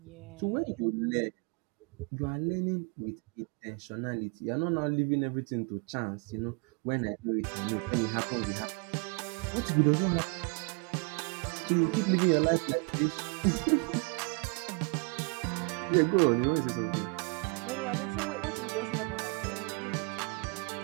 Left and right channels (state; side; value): quieter; left; 33.9 dB